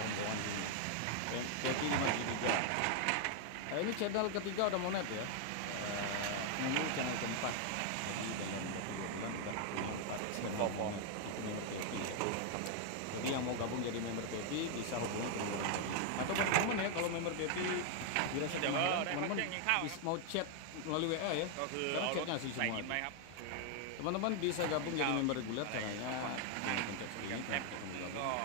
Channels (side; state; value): both; different; correlation 0.00